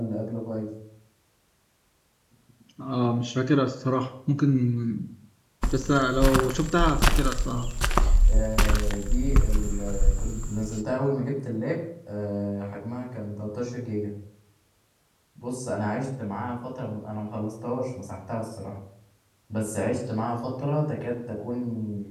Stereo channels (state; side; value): identical; both; correlation 1.00